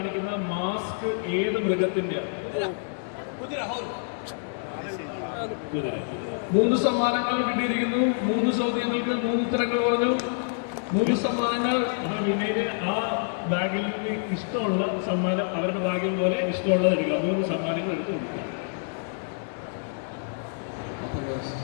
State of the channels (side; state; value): right; silent; 60 dB below the other